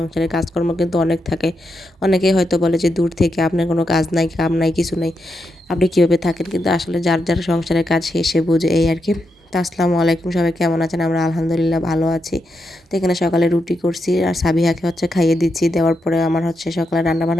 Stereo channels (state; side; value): normal; both; correlation 0.84